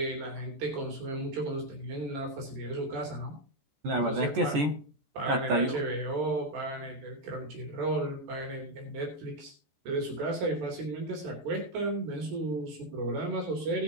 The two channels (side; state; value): left; late; 14 ms